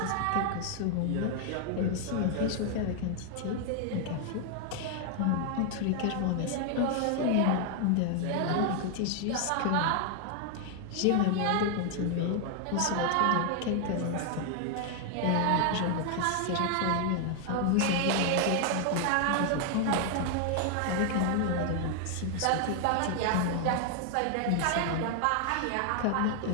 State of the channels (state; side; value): different; both; correlation 0.00